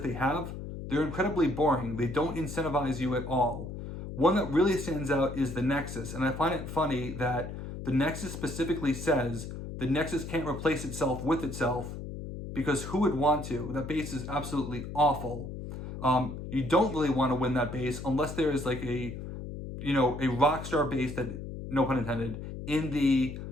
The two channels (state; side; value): noise; left; hum, 8 dB below the sound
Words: they have, they're incredibly boring. They don't incentivize you at all. One that really stands out is the Nexus, and I find it funny that the Nexus specifically says the Nexus can't replace itself with itself, because who would want to? That base is absolutely awful. You don't really want to win that base unless there is like a rockstar base that, no pun intended, in the